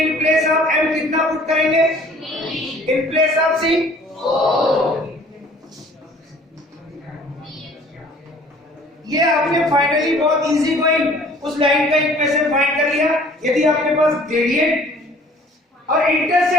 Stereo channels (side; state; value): both; normal; correlation 0.53